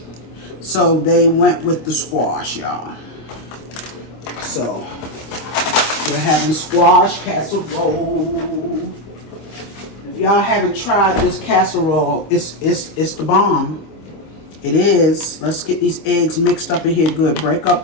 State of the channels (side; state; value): right; late; 25 ms